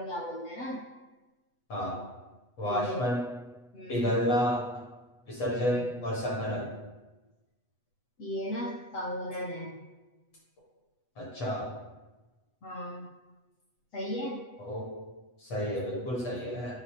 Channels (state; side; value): late; right; 8.0 ms